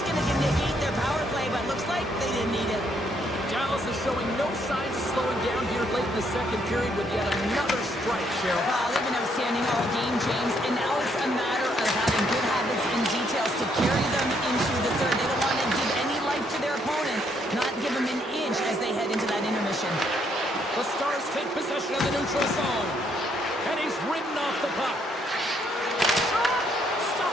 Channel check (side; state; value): both; normal; correlation 0.72